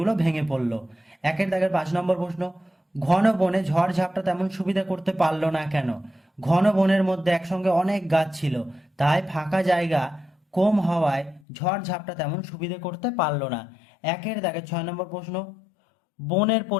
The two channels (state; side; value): drops out; right; at 11.4 s